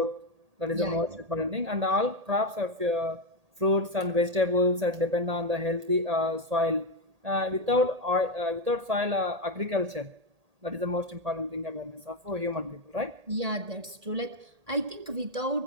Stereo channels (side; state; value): left; late; 1.8 ms